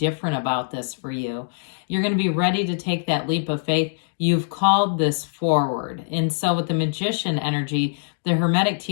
about this for you. You're going to be ready to take that leap of faith. You've called this forward. And so with the Magician energy, the Hermetic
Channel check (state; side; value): silent; right; digital silence